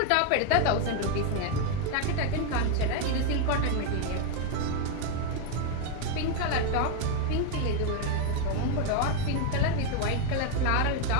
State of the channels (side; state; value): both; different; correlation 0.01